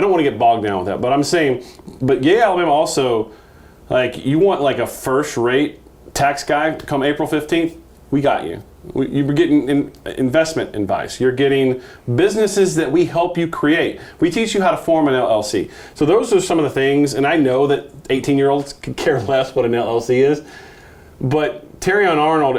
want to get bogged down with that, but I'm saying, but Alabama also, like, you want like a first-rate tax guy come April 15th, we got you. You're getting investment advice. You're getting businesses that we help you create. We teach you how to form an LLC. So those are some of the things, and I know that 18-year-olds could care less what an LLC is, but Terrion Arnold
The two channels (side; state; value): both; identical; correlation 1.00